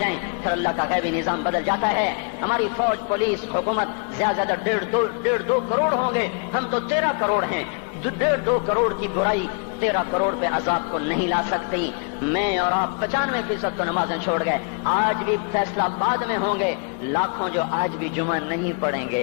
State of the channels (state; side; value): quieter; right; 38.4 dB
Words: پھر اللہ کا غیبی نظام بدل جاتا ہے. ہماری فوج، پولیس، حکومت زیادہ 1.5-2 کروڑ ہوں گے، ہم تو 13 کروڑ ہیں. 1.5-2 کروڑ کی برائی 13 کروڑ پہ عذاب کو نہیں لا سکتی. میں اور آپ 95% کو نمازیں چھوڑ گئے، آج بھی فیصلہ بعد میں ہوں گے. لاکھوں جو آج بھی جمعہ نہیں پڑھیں